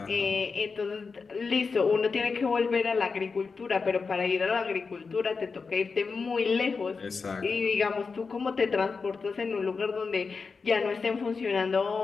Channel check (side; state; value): right; quieter; 4.8 dB